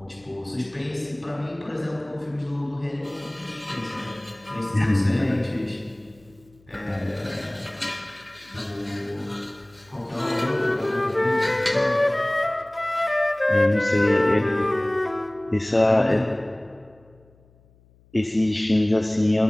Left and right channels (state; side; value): noise; left; hum, 30 dB below the sound